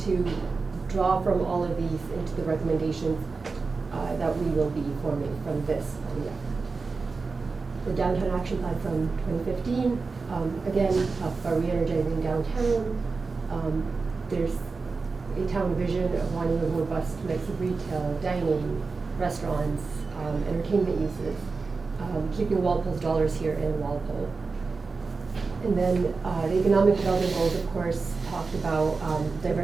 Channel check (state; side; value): quieter; left; 4.3 dB